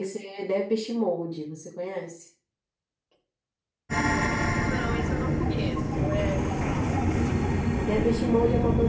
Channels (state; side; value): identical; both; correlation 1.00